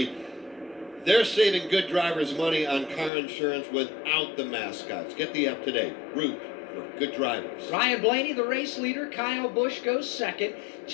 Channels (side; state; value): right; drops out; at 3.1 s